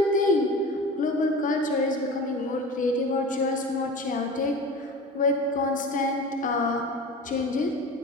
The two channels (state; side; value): normal; both; correlation 0.34